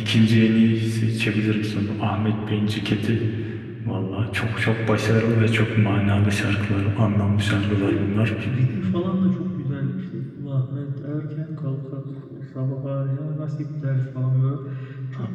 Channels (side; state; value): both; identical; correlation 1.00